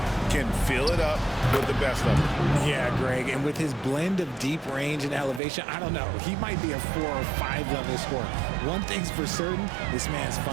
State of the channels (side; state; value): left; drops out; at 5.4 s